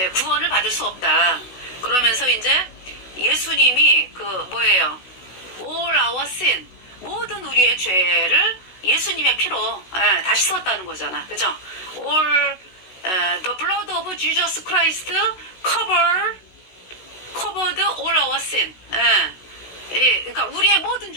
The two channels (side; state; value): right; late; 16 ms